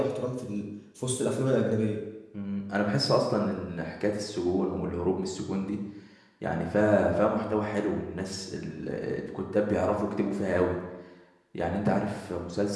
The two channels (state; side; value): identical; both; correlation 1.00